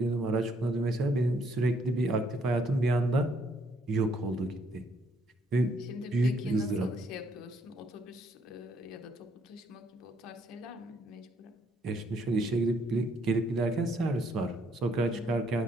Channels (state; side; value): normal; both; correlation 0.70